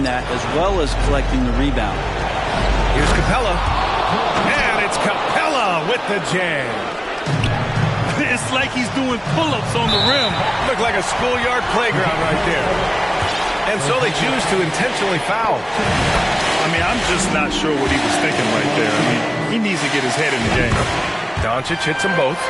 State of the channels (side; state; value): both; identical; correlation 1.00